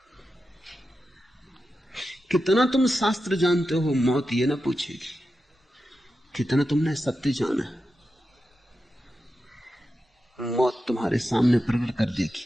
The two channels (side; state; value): both; normal; correlation 0.90